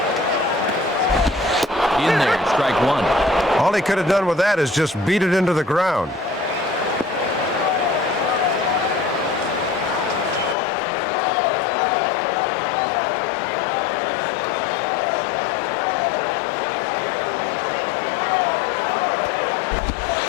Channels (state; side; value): drops out; right; at 10.6 s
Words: In there, strike one. All he could have done with that is just beat it into the ground.